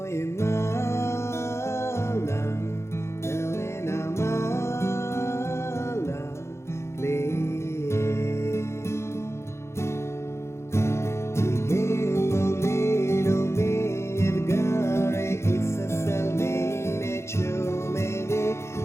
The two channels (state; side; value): late; right; 0.13 ms